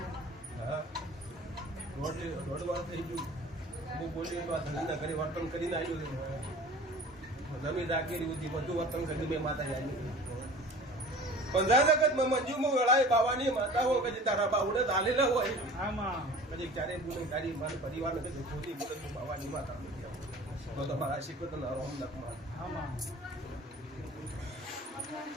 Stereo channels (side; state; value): both; normal; correlation 0.43